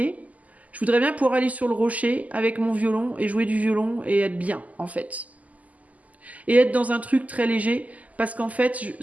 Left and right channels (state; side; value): late; left; 0.075 ms